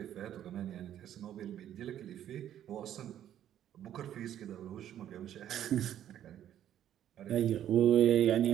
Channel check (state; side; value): quieter; left; 11.0 dB